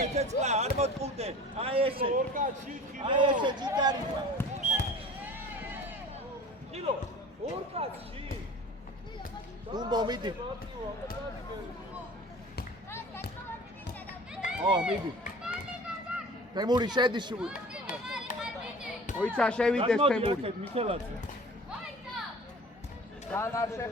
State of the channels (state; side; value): normal; both; correlation 0.42